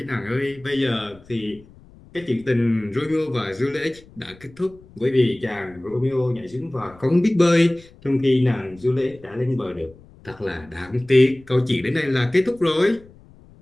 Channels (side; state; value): left; noise; rumble, 24 dB below the sound